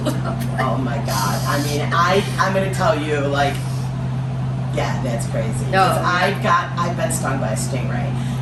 up. Oh my God! I mean, I'm gonna tell you, like. Yeah, that's crazy. No. I've been stung by a stingray.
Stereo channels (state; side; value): identical; both; correlation 1.00